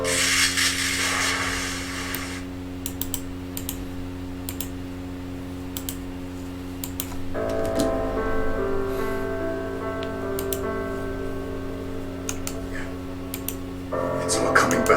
It's all coming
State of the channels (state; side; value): identical; both; correlation 1.00